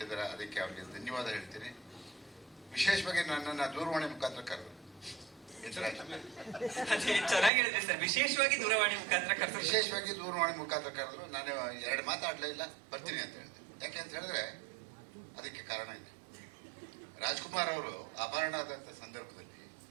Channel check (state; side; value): drops out; left; at 7.5 s